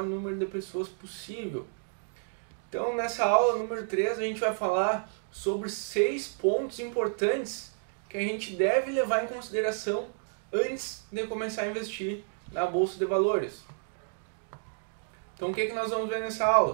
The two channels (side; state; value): left; silent; digital silence